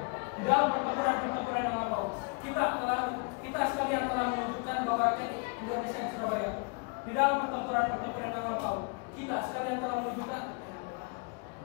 di dalam pertempuran yang lampau, kita sekalian telah menunjukkan bahwa rakyat Indonesia di Surabaya. Di dalam pertempuran yang lampau, kita sekalian telah menunjukkan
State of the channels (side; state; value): right; quieter; 32.4 dB